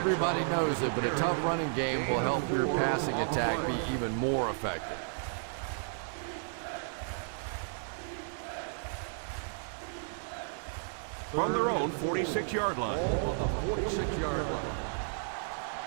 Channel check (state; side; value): silent; left; digital silence